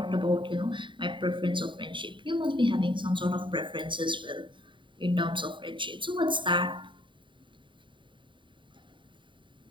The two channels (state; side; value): late; left; 0.23 ms